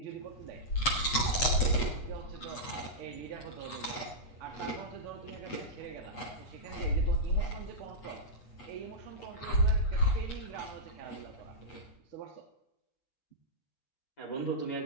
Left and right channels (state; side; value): late; right; 8.2 ms